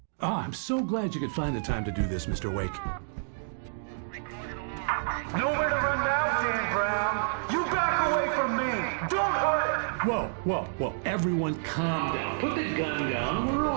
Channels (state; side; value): silent; left; digital silence